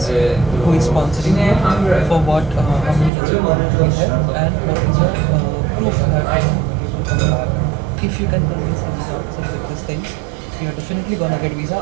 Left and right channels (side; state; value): left; drops out; at 3.1 s